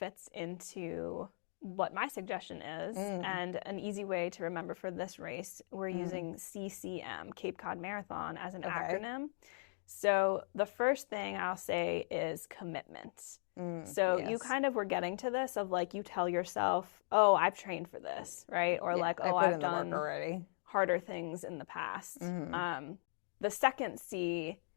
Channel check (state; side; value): silent; right; digital silence